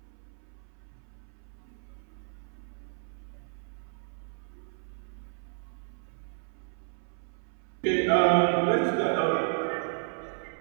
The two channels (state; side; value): silent; left; 56 dB below the other